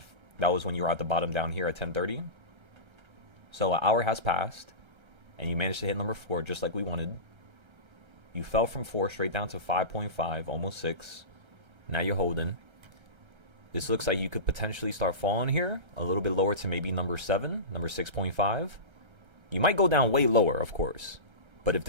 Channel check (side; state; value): left; late; 1.3 ms